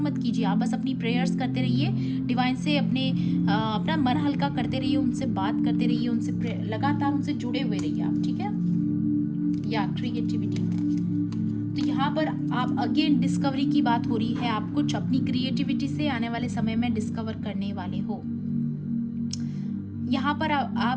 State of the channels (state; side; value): identical; both; correlation 1.00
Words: मत कीजिए, आप बस अपनी प्रेयर्स करते रहिए, डिवाइन से अपना मन हल्का करते रहिए, उनसे बात करते रहिए, उनसे लगातार उनसे जुड़े हुए रहिए आप, ठीक है। या क्रिएटिविटी, तो यहाँ पर आप अगेन डिस्कवरी की बात हो रही है, आप कुछ अपनी क्रिएटिविटी से आने वाले समय में डिस्कवर करने वाले हो। यहाँ पर